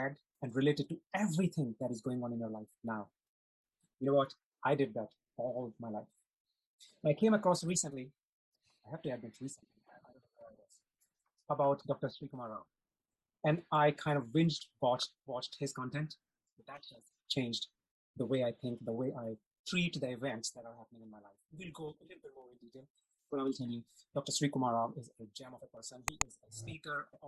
and related to everything that is going on in your life now? You know what? I did that all my life. I came across recently, I have to admit recently, I don't know where it was, about Dr. Srikumar Rao. And I kind of watched his content. That has changed the way I think, the way I treat the events that are happening in my life. We'll go a little bit more in detail, but I will tell you, Dr. Srikumar Rao is a gem of a person. He is a speaker,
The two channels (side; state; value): both; identical; correlation 1.00